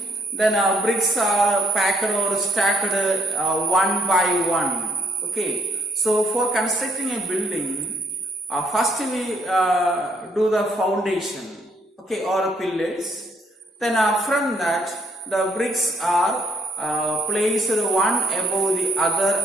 then bricks are packed or stacked one by one. Okay, so for constructing a building, first we do the foundation, okay, or pillars. Then from that, the bricks are placed one above the other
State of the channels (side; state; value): both; normal; correlation 0.69